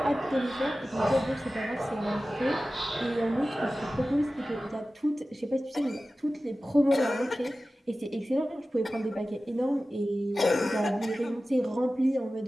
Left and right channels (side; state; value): both; normal; correlation 0.95